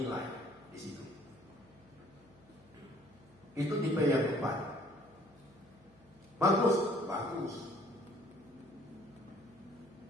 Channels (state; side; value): noise; left; hum, 28 dB below the sound